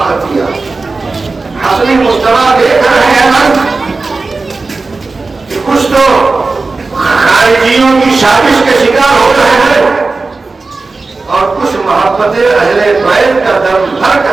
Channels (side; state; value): left; quieter; 3.8 dB